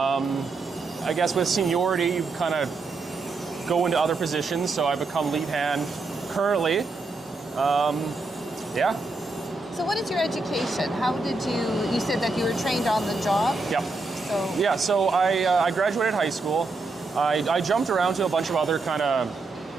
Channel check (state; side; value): quieter; left; 3.6 dB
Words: I guess with seniority, you kind of go into other positions, so I become lead hand currently. Yeah. So what is your education? How did you said that you were trained on the job? Yep. So. Yeah, so I graduated high school. I jumped around to a bunch of other kind of